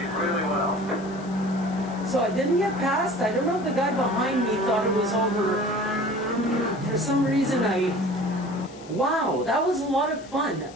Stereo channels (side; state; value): left; noise; hiss, 22 dB below the sound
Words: did really well. So I didn't get past. I don't know if the guy behind me thought it was over. For some reason wow, that was a lot of fun.